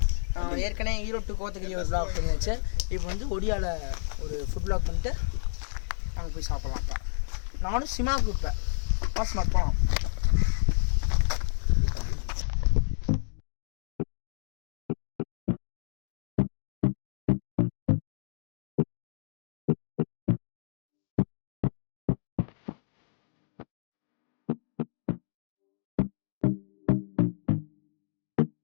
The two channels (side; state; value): right; silent; digital silence